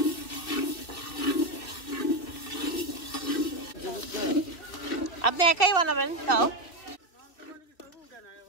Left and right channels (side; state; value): right; late; 2.5 ms